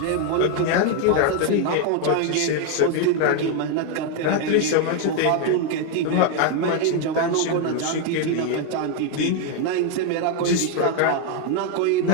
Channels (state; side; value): different; both; correlation 0.01